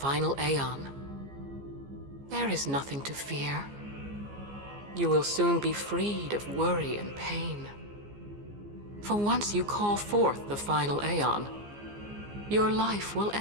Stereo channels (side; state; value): left; late; 15 ms